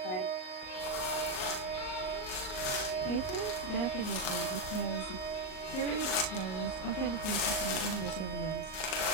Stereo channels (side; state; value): right; late; 38 ms